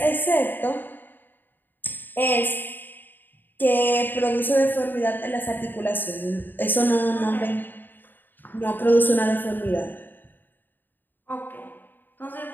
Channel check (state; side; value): late; right; 0.091 ms